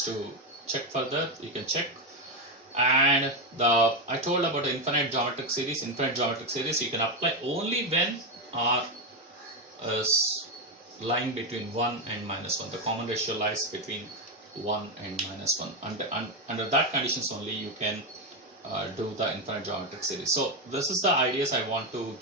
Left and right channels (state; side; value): normal; both; correlation 0.09